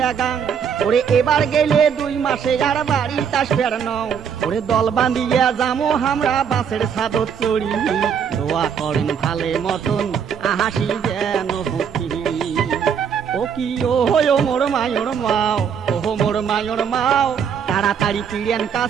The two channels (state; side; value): quieter; left; 7.4 dB